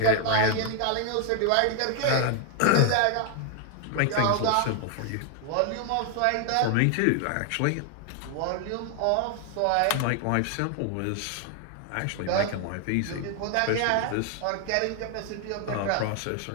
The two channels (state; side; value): different; both; correlation 0.00